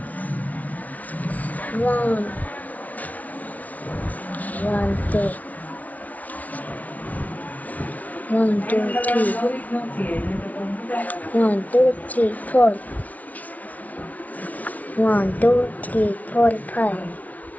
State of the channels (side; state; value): right; late; 0.072 ms